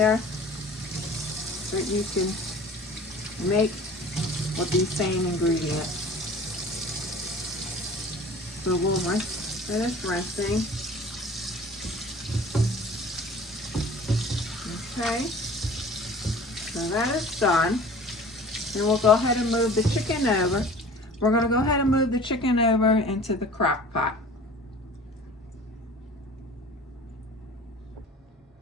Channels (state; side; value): normal; both; correlation 0.44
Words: that you can make with these same ingredients. So we'll finish rinsing. Okay, so that is done. And we'll go ahead and move the chicken over. We're going to go ahead and move the chicken over into the crock pot.